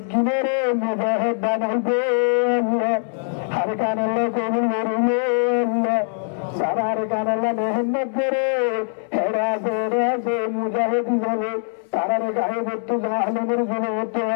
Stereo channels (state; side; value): silent; right; 63 dB below the other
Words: মুজাহিদ বানাইবে আল্লাহ হর কান আল্লাহ কবুল করবে আল্লাহ সারার কান আল্লাহ মেহনত করে হেরাছে মুজাহিদ হিসাবে তারার গায়ে বর্তু জাহালেমের জনবর্তু